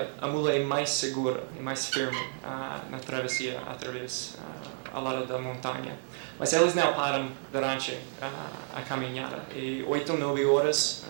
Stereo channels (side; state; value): left; silent; digital silence